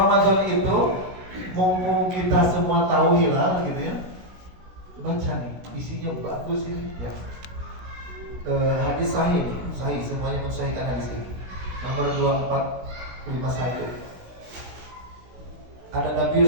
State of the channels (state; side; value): late; left; 16 ms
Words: itu mumpung kita semua tahu hilal gitu ya, baca nih, isinya bagus ini. Ya. Hadis sahih semuanya mensahihkan hadis ini. Nomor 2451. Ada Nabi